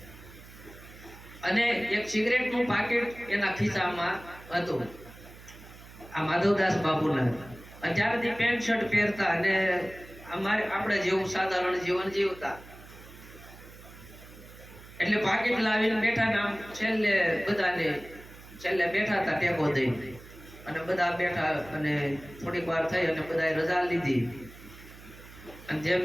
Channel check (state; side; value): noise; right; hum, 19 dB below the sound